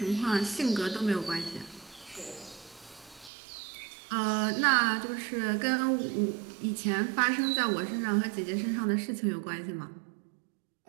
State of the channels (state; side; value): drops out; left; at 3.3 s